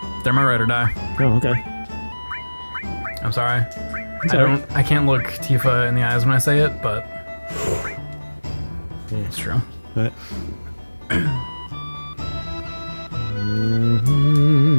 They're my ride or die. Oh, okay. I'm sorry. I can't look Tifa in the eyes when I say it, but yeah. It's true. What?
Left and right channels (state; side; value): inverted; both; correlation -1.00